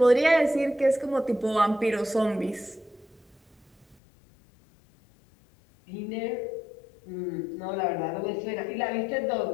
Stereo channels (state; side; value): drops out; right; at 4.0 s